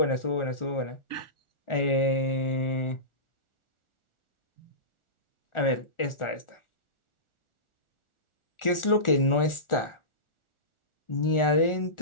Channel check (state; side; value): late; right; 1.4 ms